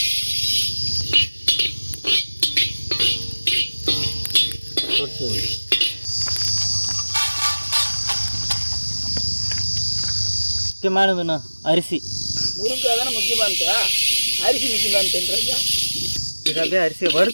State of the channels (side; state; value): both; inverted; correlation -1.00